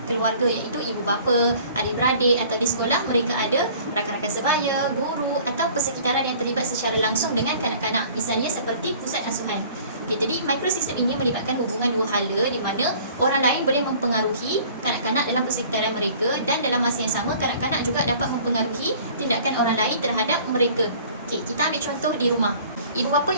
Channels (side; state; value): both; inverted; correlation -0.50